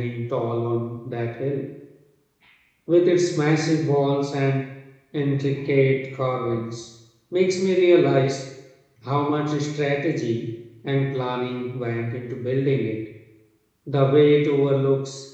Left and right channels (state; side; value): identical; both; correlation 1.00